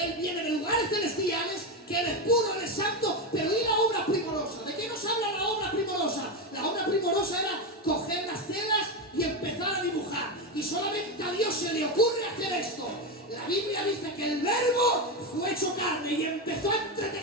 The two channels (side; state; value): both; normal; correlation 0.13